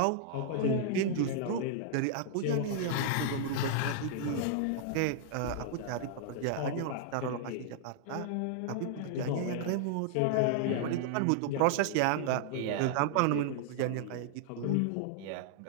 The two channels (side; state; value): both; different; correlation -0.01